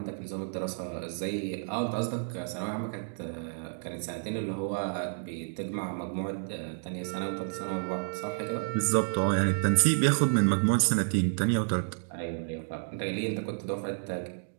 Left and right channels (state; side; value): silent; left; digital silence